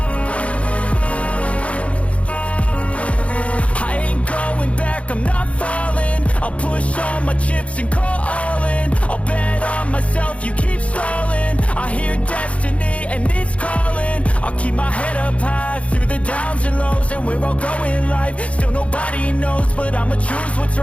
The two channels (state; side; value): late; right; 0.063 ms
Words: I'm not falling, I'll push all my chips and call all in. I'll bet on myself, you keep stalling. I hear destiny and it's calling. I'll keep my head up high through the downs and lows, and where I'll go in life, still nobody knows. But I'ma choose what's